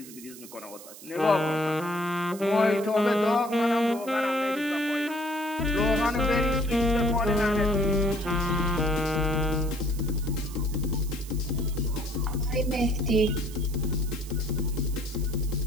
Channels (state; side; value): noise; right; hiss, 17 dB below the sound